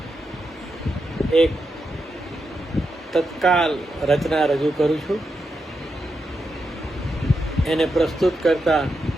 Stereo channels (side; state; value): both; normal; correlation 0.85